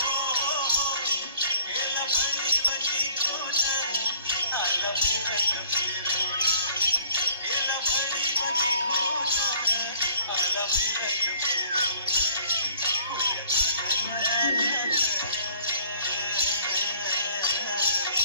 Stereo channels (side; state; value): both; inverted; correlation -0.55